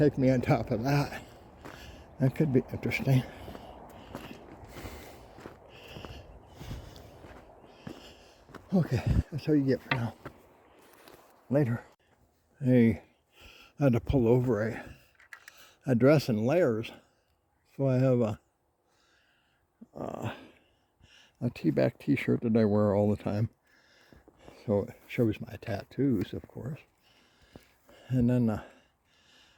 me on top of that. That could be interesting. Okay, that's all you get for now. Later. Hey, I had to pull over a dress in layers. So I have a T-back t-shirt that I wear all the time. So it shows my tattoos, of course. And then a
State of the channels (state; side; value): identical; both; correlation 1.00